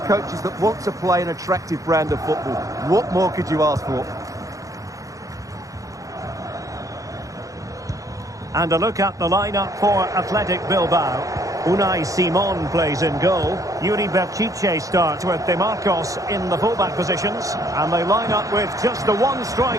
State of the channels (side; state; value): left; late; 0.16 ms